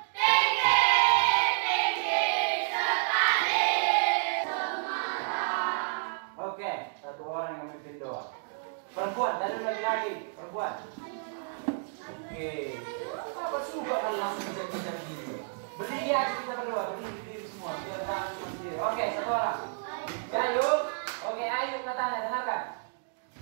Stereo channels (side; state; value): left; silent; digital silence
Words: Perempuan, dan lagi-lagi perempuan. Oke. Apa suka kalau langsung bisa begini? Berdiri aja kita berdua, berdiri semua. Biar jangan cuma sendiri. Oke, 1 orang. Ayo. Oke, ayo katanya dengarkan.